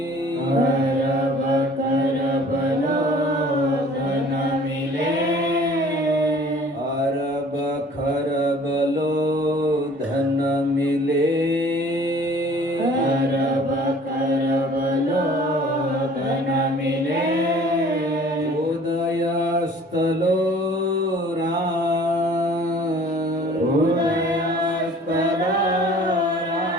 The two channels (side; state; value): both; normal; correlation 0.51